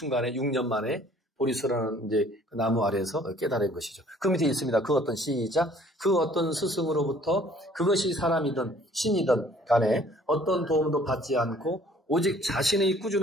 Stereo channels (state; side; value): normal; both; correlation 0.56